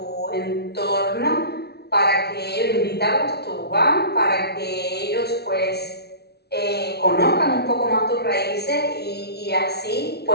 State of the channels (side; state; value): right; late; 0.48 ms